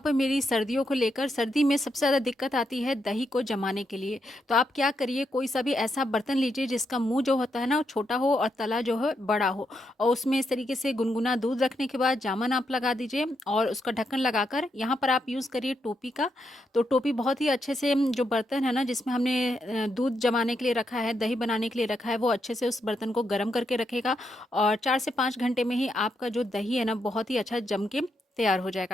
मेरी सर्दियों को लेकर। सर्दी में सबसे ज़्यादा दिक्कत आती है दही को जमाने के लिए। तो आप क्या करिए, कोई सा भी ऐसा बर्तन लीजिए जिसका मुंह जो होता है ना वो छोटा हो और तला जो है बड़ा हो, और उसमें इस तरीके से गुनगुना दूध रखने के बाद जामन आप लगा दीजिए और उसका ढक्कन लगाकर यहाँ पर आप यूज़ करिए टोपी का। तो टोपी बहुत ही अच्छे से जो बर्तन है ना जिसमें हमने दूध जमाने के लिए रखा है, दही बनाने के लिए रखा है, वो अच्छे से उस बर्तन को गर्म करके रखेगा और 4 से 5 घंटे में ही आपका जो दही है ना बहुत ही अच्छा जम के तैयार हो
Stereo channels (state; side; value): normal; both; correlation 0.81